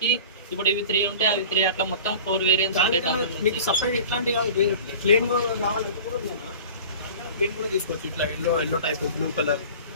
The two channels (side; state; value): both; inverted; correlation -0.40